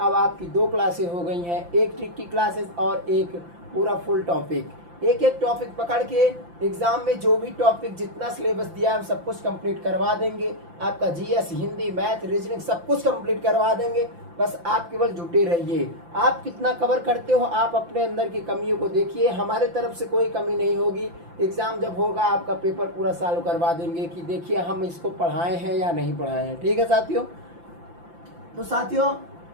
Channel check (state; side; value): late; left; 5.8 ms